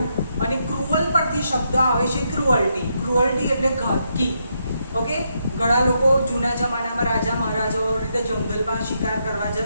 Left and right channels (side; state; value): both; inverted; correlation -0.79